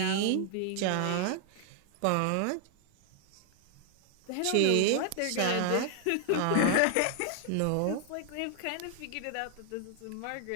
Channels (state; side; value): different; both; correlation 0.00